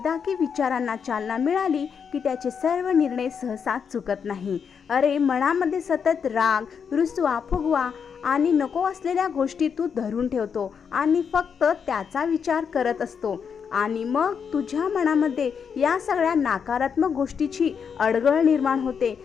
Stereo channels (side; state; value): right; quieter; 6.7 dB